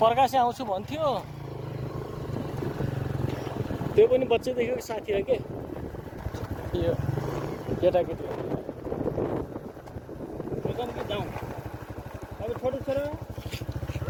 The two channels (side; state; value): both; identical; correlation 1.00